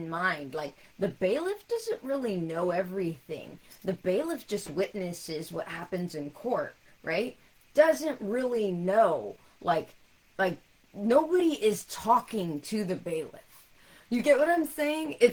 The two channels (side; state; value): both; identical; correlation 1.00